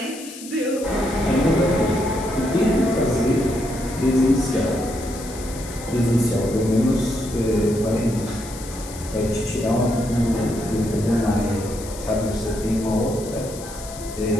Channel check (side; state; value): left; noise; hiss, 14 dB below the sound